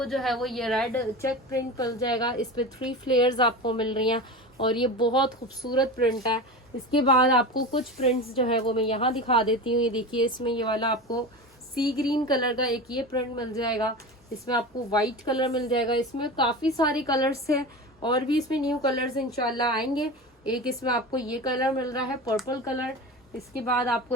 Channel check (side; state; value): both; normal; correlation 0.28